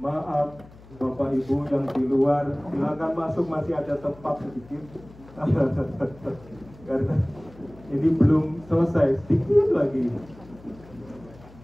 Bapak Ibu yang di luar, silakan masuk, masih ada tempat sedikit. Karena ini belum selesai, sedikit lagi.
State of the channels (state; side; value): noise; left; hum, 22 dB below the sound